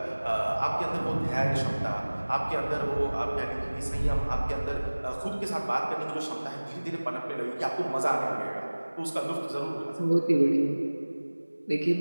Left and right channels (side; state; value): both; inverted; correlation -1.00